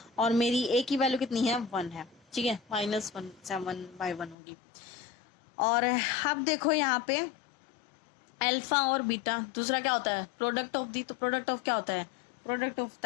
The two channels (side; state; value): right; drops out; at 4.4 s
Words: और मेरी a की वैल्यू कितनी है, 1 है। ठीक है, -1, 7/1 होगी। और अब देखो यहाँ पे अल्फा और बीटा, दूसरा क्या होता है, प्रोडक्ट ऑफ दी। तो प्रोडक्ट ऑफ क्या होता है, प्रोडक्ट ऑफ